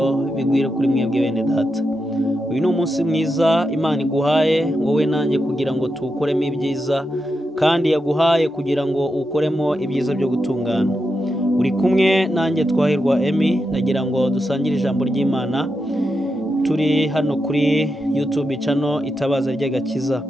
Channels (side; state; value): both; normal; correlation 0.86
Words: bigwire kuri mwebwe bene data. Uyu ni umunsi mwiza Imana iguhaye wowe nanjye kugira ngo tuwukoremo ibyiza, kandi yaguhaye kugira ngo ukoremo ibyiza byo gutungana. Uri kumwe nanjye Twahirwa Emmy, nagira ngo dusangire ijambo ry'Imana. Turi hano kuri YouTube channel Itabaza ry'Agakiza.